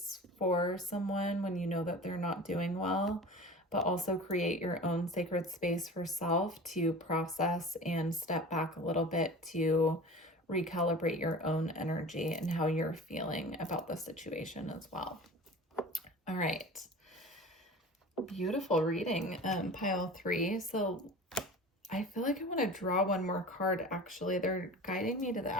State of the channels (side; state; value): both; normal; correlation 0.37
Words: for someone when you know that they're not doing well, but also create your own sacred space for self to process and step back a little bit to recalibrate your own energy and how you're feeling about the situation as well. All right. Beautiful reading, pile 3. So I feel like I want to draw one more card, actually. They're guiding me to the